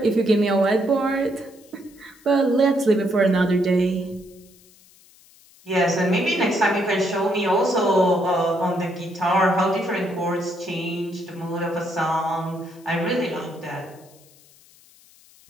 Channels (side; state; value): left; noise; hiss, 27 dB below the sound